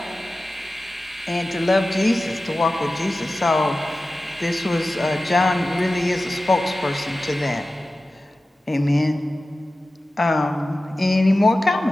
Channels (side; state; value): both; normal; correlation 0.95